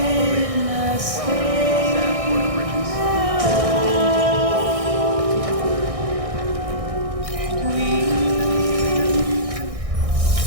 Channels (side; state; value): left; late; 1.6 ms